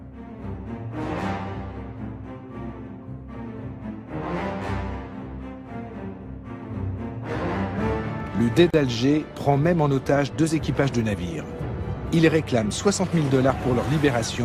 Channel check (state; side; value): identical; both; correlation 1.00